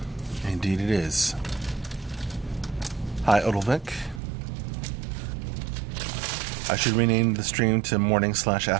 Indeed it is. Hi, Odilvik. I should rename the stream to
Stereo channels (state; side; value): drops out; left; at 4.2 s